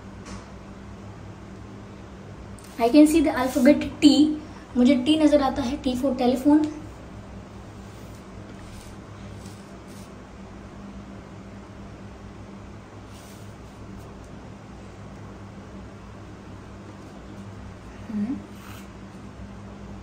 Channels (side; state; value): both; identical; correlation 1.00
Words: I can see the alphabet T. मुझे T नजर आता है, T for telephone.